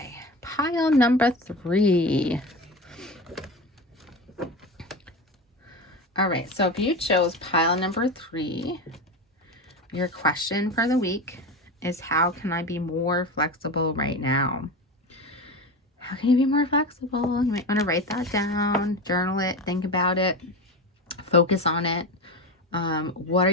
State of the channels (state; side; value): normal; both; correlation 0.24